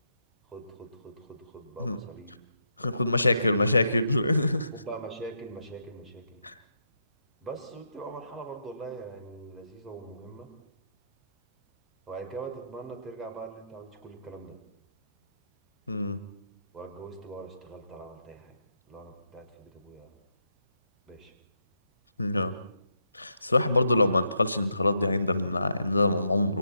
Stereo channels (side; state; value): both; inverted; correlation -0.81